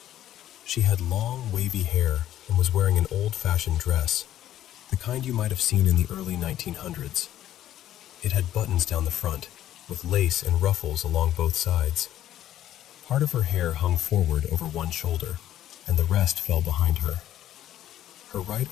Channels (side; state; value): right; quieter; 12.2 dB